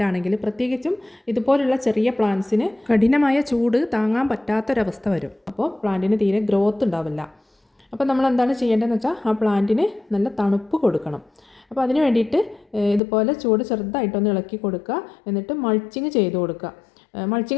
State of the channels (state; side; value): drops out; right; at 13.0 s